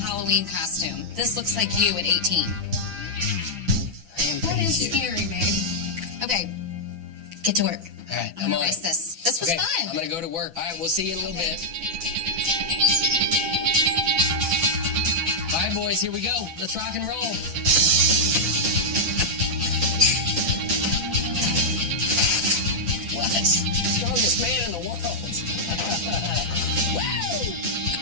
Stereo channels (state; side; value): late; left; 6.0 ms